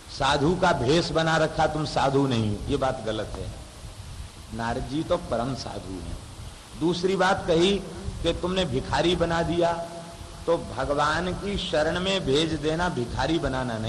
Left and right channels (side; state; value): both; identical; correlation 1.00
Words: साधु का भेष बना रखा, तुम साधु नहीं, ये बात गलत है। नारद जी तो परम साधु हैं। दूसरी बात कही कि तुमने भिखारी बना दिया, तो भगवान की शरण में भेज देना भिखारी बनाना